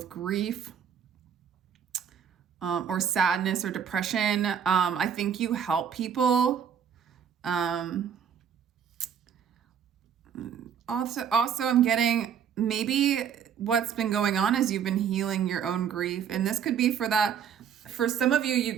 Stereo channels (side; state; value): left; quieter; 8.0 dB